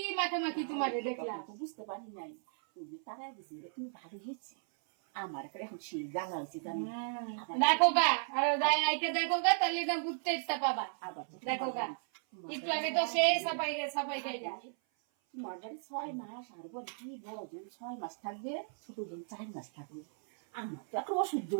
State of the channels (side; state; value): left; silent; 54 dB below the other